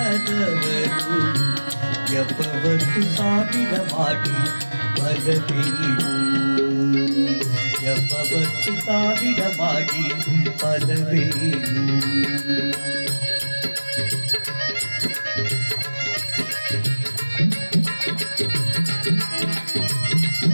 ಜಪವತ್ತು ಸಾವಿರ ಮಾಡಿ ಫಲವೇನು? ಜಪವತ್ತು ಸಾವಿರ ಮಾಡಿ ಫಲವೇನು?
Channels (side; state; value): both; inverted; correlation -1.00